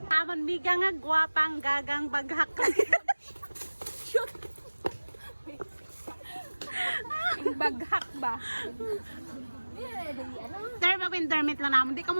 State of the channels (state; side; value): inverted; both; correlation -1.00